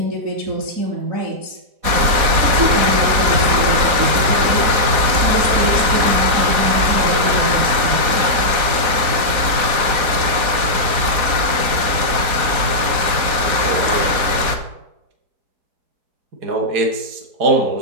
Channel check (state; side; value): late; left; 4.1 ms